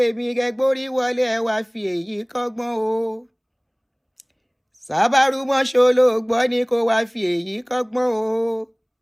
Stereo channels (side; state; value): both; identical; correlation 1.00